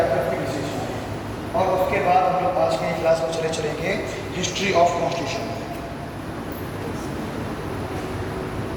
क्या उसकी विशेषताएं, और उसके बाद हम लोग आज के क्लास में चलेंगे history of constitution.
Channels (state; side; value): identical; both; correlation 1.00